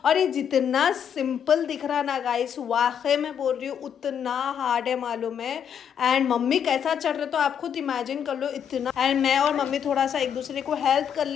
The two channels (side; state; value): right; quieter; 8.3 dB